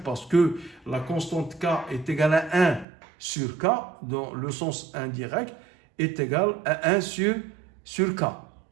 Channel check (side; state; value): left; drops out; at 2.9 s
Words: Parce que la constante K est égale à 1 sur K, dans le sens indirect est égal à 1 sur K.